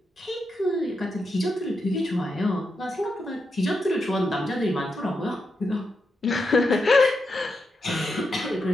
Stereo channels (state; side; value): normal; both; correlation 0.85